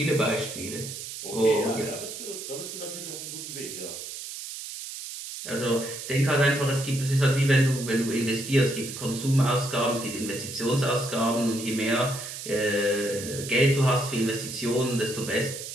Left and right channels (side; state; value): right; noise; hiss, 9 dB below the sound